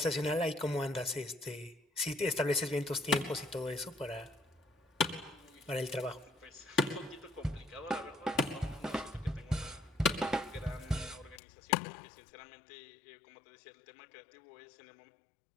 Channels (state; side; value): drops out; right; at 11.4 s